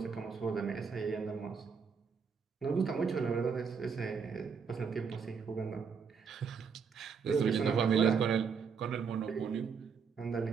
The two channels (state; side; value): quieter; left; 6.0 dB